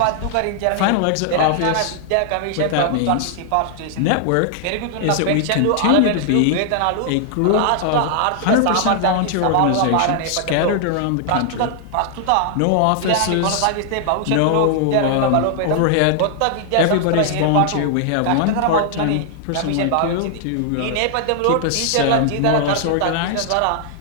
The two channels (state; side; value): different; both; correlation 0.00